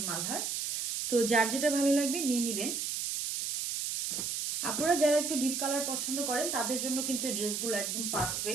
মালহার। তো যার যেটা ভালো লাগবে নিয়ে নেবেন। আপনারা যারা একটু ডিপ কালার পছন্দ করেন তাদের জন্য কিন্তু এই ড্রেসগুলো একদম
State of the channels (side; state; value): right; noise; hiss, 2 dB below the sound